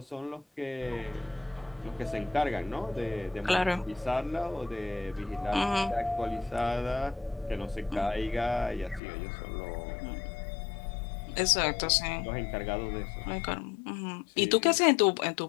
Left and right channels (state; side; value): drops out; right; at 9.0 s